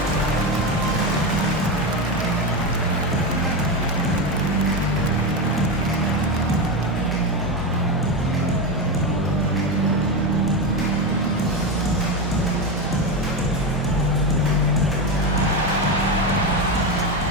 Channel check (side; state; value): both; normal; correlation 0.14